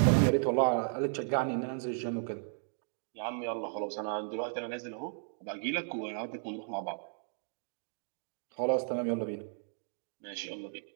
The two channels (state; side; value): silent; left; digital silence